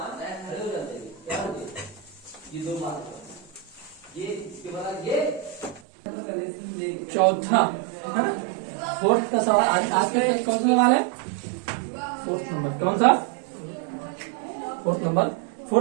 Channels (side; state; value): left; drops out; at 5.8 s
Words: चौथा है ना, फोर्थ का सवाल आज के कौन सा सवाल है, फोर्थ नंबर, कौन सा, फोर्थ